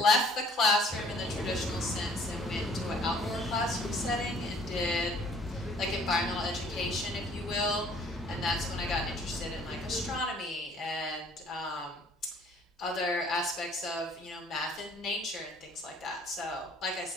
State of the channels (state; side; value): normal; both; correlation 0.57